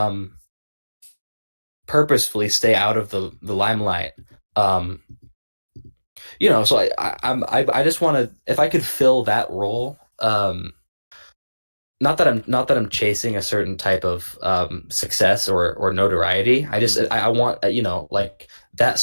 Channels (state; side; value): inverted; both; correlation -1.00